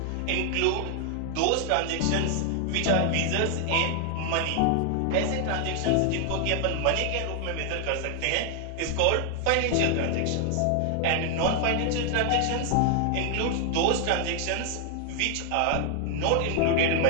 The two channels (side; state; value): both; different; correlation 0.00